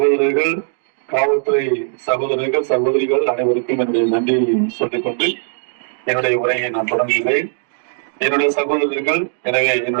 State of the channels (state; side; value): silent; left; digital silence